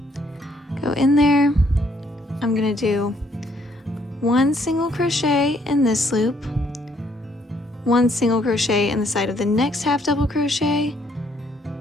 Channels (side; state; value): both; normal; correlation 0.68